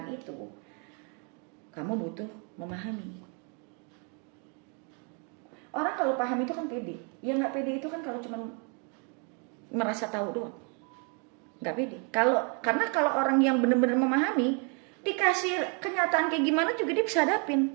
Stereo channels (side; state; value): left; quieter; 36.9 dB